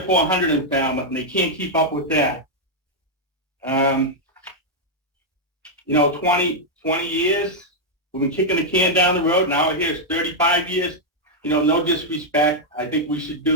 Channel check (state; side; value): normal; both; correlation -0.03